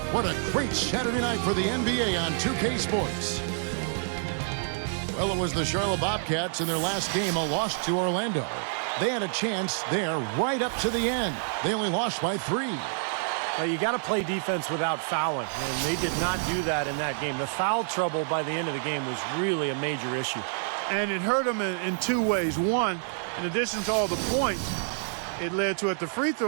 What a great Saturday night for the NBA on 2K Sports. Well, it was the Charlotte Bobcats in their last game, a loss to Orlando. They had a chance there right up to the end. They only lost by 3. Well, you got to play defense without fouling, and they did not do that in that game. The foul trouble by the end of the game was really a major issue. And it hurt them in two ways. One, in addition to all the points it led to at the free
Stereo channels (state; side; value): silent; left; digital silence